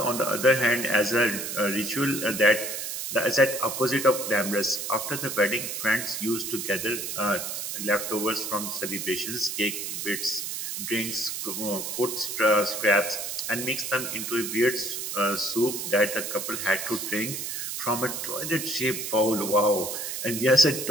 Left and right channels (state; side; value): noise; right; hiss, 4 dB below the sound